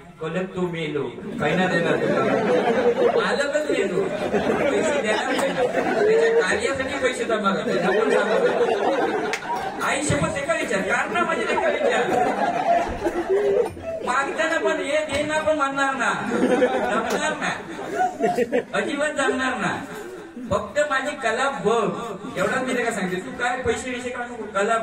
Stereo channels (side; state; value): both; identical; correlation 1.00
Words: कलक तो मेलो पहिला देणार मालकच मेलो पैसे देणार त्याच्या कार्यासाठी पैसे जमा करते. आई शपथ एका विचार कारण माझे एका विचार मागताना पण हे देणार पण म्हणणार ना जमणार ना अजिबात जमणार ना. फक्त माझी कला बघ एवढाच मी का सांगते. तू काय पैसे विषय काढू नको कला